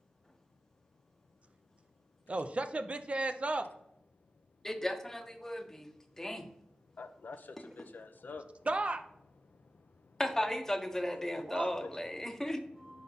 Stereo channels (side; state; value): both; normal; correlation 0.93